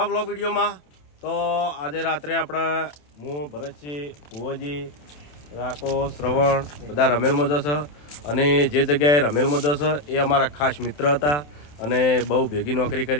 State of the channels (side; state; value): right; late; 27 ms